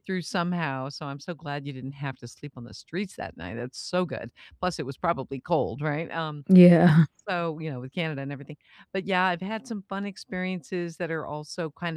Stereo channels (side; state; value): both; identical; correlation 1.00